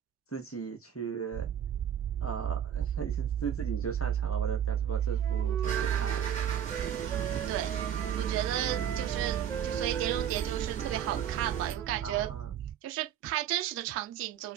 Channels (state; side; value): quieter; left; 9.5 dB